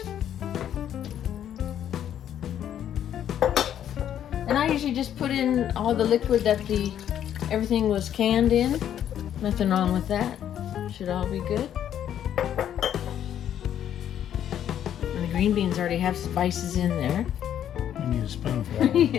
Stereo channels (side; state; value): right; quieter; 10.2 dB